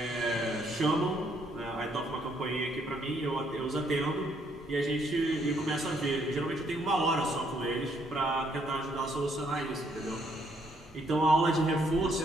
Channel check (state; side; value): normal; both; correlation 0.70